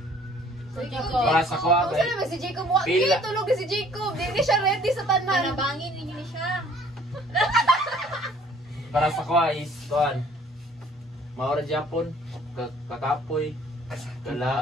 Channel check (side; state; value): both; normal; correlation 0.56